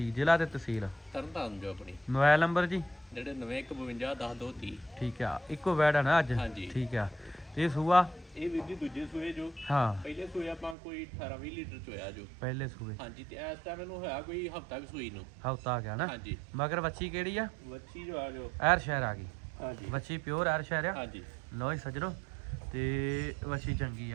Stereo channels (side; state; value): left; drops out; at 10.8 s